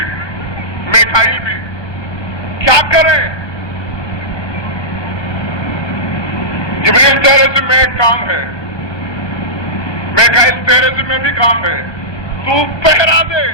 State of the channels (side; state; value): right; late; 1.2 ms